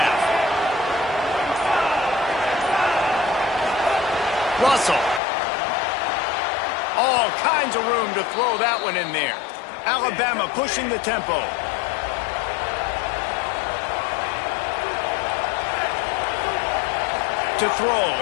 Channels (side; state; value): right; drops out; at 5.2 s